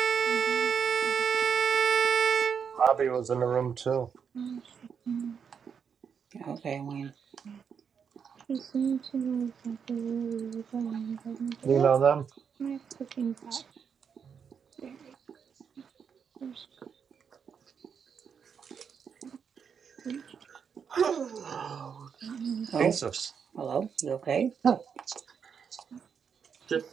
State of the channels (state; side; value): quieter; left; 6.9 dB